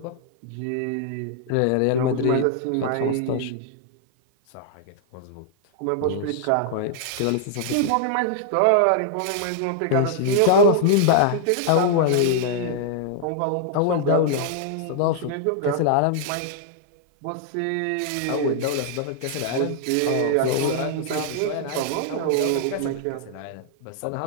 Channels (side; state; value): both; different; correlation -0.01